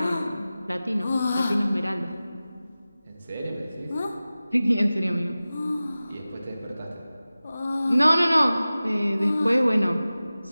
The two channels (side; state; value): both; inverted; correlation -0.97